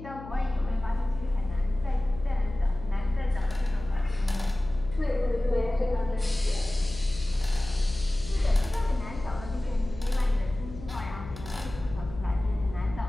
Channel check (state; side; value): noise; left; hum, 13 dB below the sound